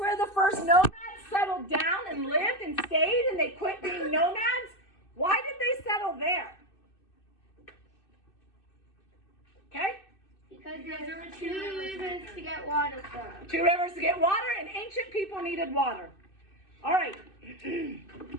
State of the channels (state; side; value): late; right; 2.6 ms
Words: the first nomads settled down and lived and stayed, and they quit being nomads. Why did they settle there? Okay? Because there were 2 rivers to get water from. 2 rivers to get water, and ancient people needed water. All right.